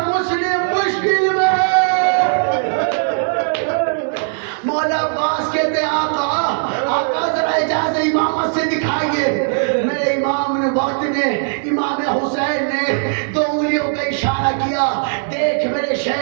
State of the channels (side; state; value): left; silent; digital silence